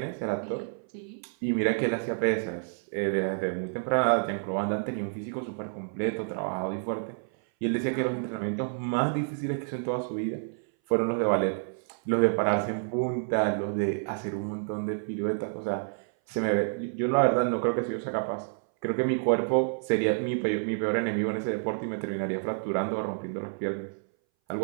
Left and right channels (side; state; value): left; silent; 59 dB below the other